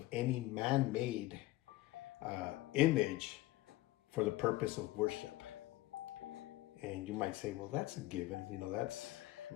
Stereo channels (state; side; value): quieter; right; 17.6 dB